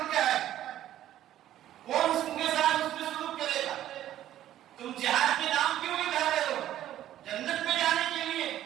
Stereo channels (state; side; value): quieter; left; 12.5 dB